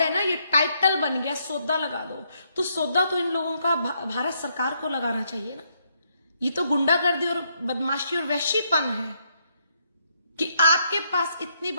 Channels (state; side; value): inverted; both; correlation -0.75